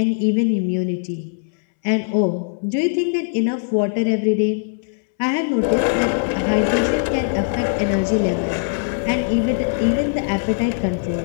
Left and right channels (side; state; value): right; silent; 65 dB below the other